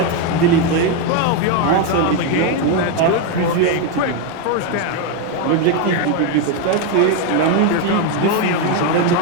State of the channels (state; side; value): different; both; correlation 0.02